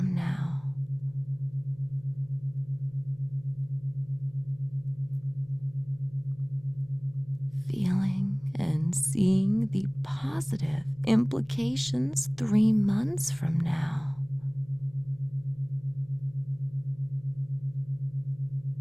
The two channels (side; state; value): left; noise; hum, 26 dB below the sound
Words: now. Feeling and seeing the positive implications 3 months from now.